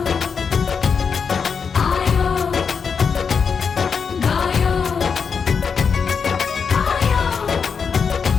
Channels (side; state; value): right; quieter; 6.0 dB